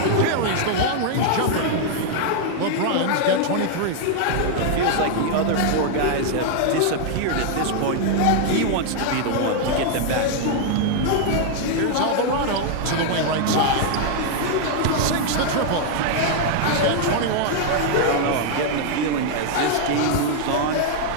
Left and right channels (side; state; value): both; different; correlation 0.00